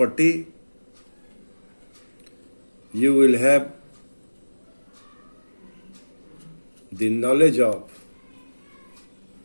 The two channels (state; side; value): inverted; both; correlation -1.00